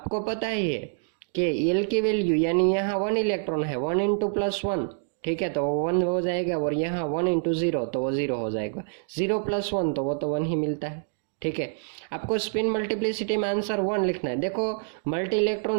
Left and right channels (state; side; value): silent; left; digital silence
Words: पता ही है कि एल की वैल्यू यानी यहाँ 1 इलेक्ट्रॉन है, 1 इंटू +1, ठीक है, तो 1 हो जाएगा, और यहाँ 1 इंटू 0 तो वो 0 हो जाएगा, 0 + 1 तो वो तो 1 ही मिलता है, ठीक है। आपको स्पिन मल्टीप्लिसिटी में आंसर 1 लिखना है। देखो मल्टी